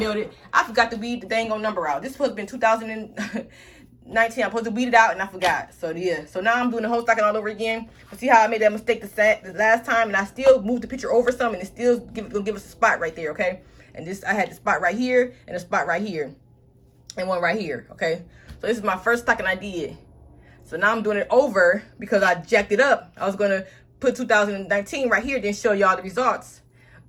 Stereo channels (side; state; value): both; identical; correlation 1.00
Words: I forgot to weed the dang on number out. This was been I'm supposed to weed it out, and I forgot. So yeah, so now I'm doing the whole stocking all over again. But see how I made that mistake the last time, and I still moved the picture over some, and it still gonna give us a spot right there, okay? And this, I had the spot right here, and a spot right here, and one right here, okay? So this is my first stocking I did. So now I'm doing it over because I jacked it up. I was gonna put 2019 right here, then show y'all the results,